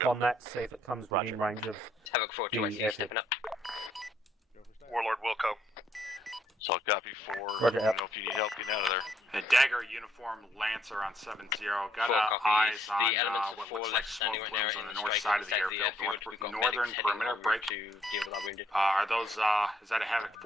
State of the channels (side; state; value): both; normal; correlation 0.69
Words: on that, see if it comes within range of Havoc 4 the 2 I see you airfield? stepping up. Warlord Wilco. Solid copy 4. Roger, Let me know if you need help getting out of there. The Dagger uniform Lancer on 7-0. Got 4 eyes copies. on The elements of what 4 looks like left smoke standing right now plumes on in the the north strike side of the inside the airfield. airfield. We've got Northern medics heading perimeter over break. to deal with our wounded. Are those, is that a Havoc